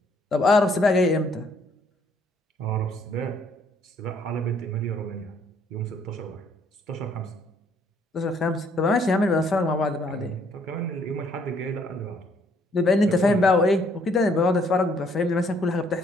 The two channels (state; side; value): normal; both; correlation 0.66